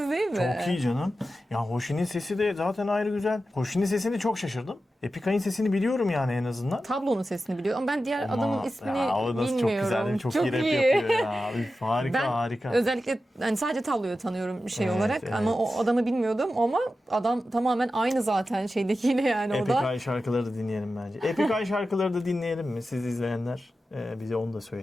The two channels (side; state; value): both; normal; correlation 0.92